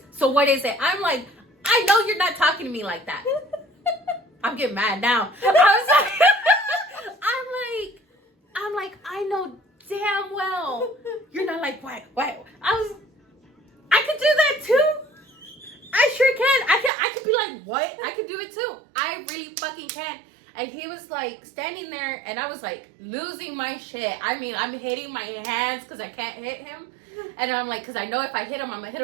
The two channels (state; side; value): drops out; left; at 16.9 s